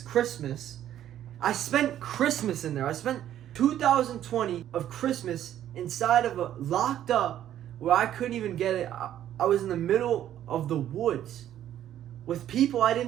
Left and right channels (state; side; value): quieter; left; 11.4 dB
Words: I spent Christmas in there. I spent 2020 of Christmas inside of a locked up where I couldn't even get it. I was in the middle of the woods with people I